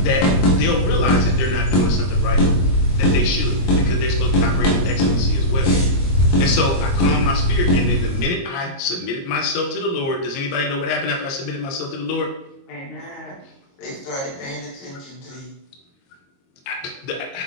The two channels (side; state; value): right; late; 22 ms